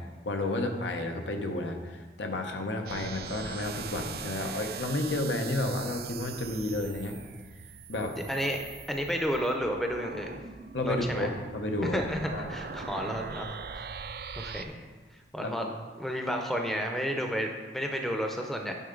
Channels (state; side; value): normal; both; correlation 0.55